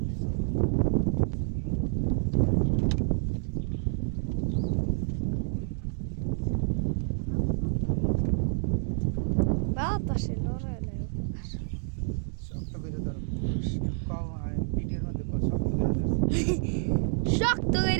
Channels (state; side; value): silent; left; 58 dB below the other